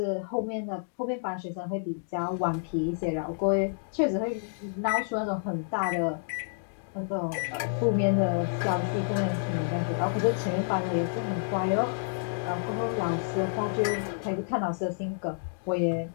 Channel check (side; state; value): right; silent; digital silence